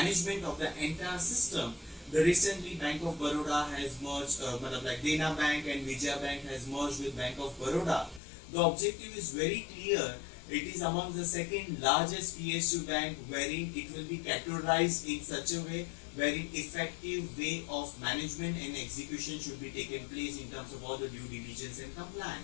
of the entire system. The recently Bank of Baroda has merged, like Dena Bank and Vijaya Bank has merged with Bank of Baroda. The objective is very clear. It is among the second largest PSU bank wherein it will be categorized in such a way wherein effective way of management and execution should be taken place in terms of all the due diligence and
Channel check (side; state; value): right; drops out; at 8.2 s